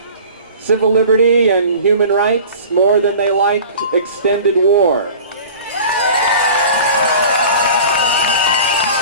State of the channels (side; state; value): both; inverted; correlation -0.41